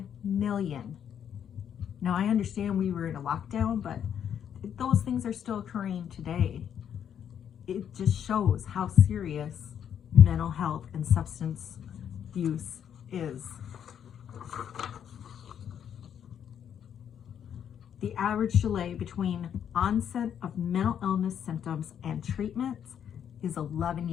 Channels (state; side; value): quieter; right; 8.8 dB